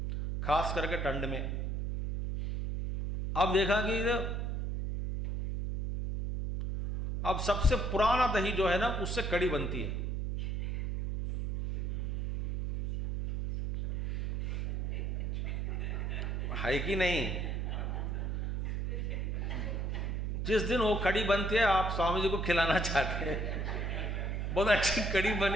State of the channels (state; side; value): noise; right; hum, 1 dB below the sound